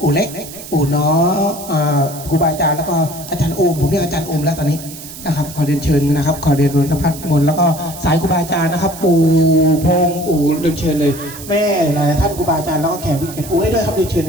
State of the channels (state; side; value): noise; right; hiss, 14 dB below the sound